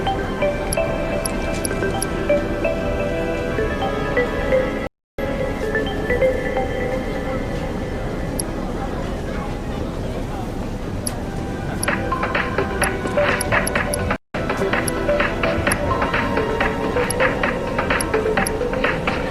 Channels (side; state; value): both; identical; correlation 1.00